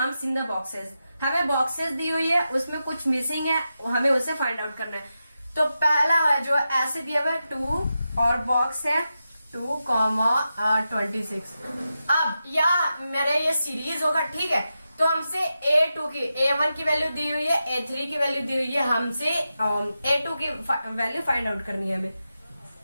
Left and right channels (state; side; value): inverted; both; correlation -0.90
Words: in the boxes. हमें बॉक्सेस दी हुई है, उसमें कुछ मिसिंग है, हमें उसे फाइंड आउट करना है। तो पहला है जो ऐसे दिया हुआ है 2 और बॉक्स है 2,26। अब या मेरे ये सीरीज होगा। ठीक है, तो हमसे A2 की A1 की वैल्यू दी हुई है, A3 की वैल्यू दी हुई है, हमसे A2 की वैल्यू फाइंड आउट करनी है हमें।